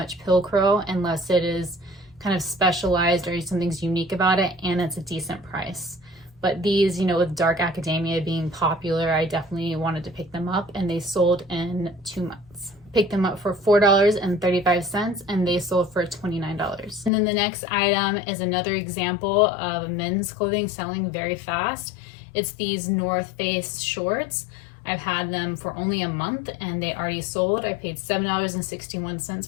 Pilcrow unless it is kind of specialized or something's unique about it and it's a decent price. But these, you know, with dark academia being popular, I definitely wanted to pick them up, and they sold in 2 months. Picked them up for $4.35 and they sold for $29. And then the next item is another example of men's clothing selling very fast. It's these North Face shorts. I've had them for only a month and they already sold. I paid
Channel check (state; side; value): drops out; right; at 17.1 s